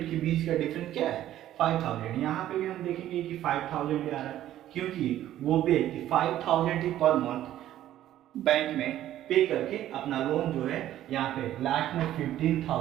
के बीच का डिफरेंस क्या है, 5,000। यहाँ पे भी हम देखेंगे कि 5,000 आ रहा है क्योंकि वो व्यक्ति 5,000 ही पर मंथ बैंक में पे करके अपना लोन जो है यहाँ पे लास्ट में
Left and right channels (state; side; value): quieter; left; 12.7 dB